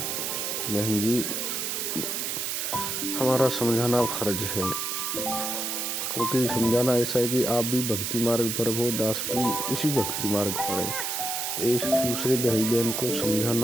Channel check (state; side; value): noise; right; hiss, 2 dB below the sound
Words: जी, हमारा समझाना फर्ज है। क्योंकि समझाना ऐसा है कि आप भी भक्ति मार्ग पर हो, दास भी इसी भक्ति मार्ग पर है, तो एक दूसरे भाई बहन को